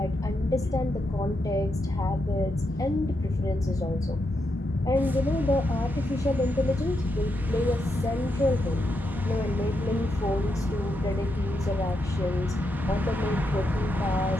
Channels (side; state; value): both; normal; correlation 0.83